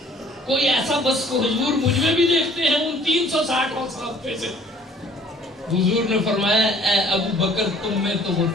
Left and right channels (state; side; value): normal; both; correlation 0.56